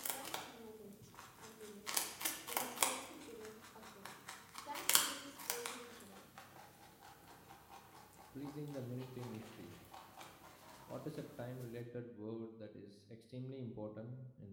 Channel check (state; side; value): identical; both; correlation 1.00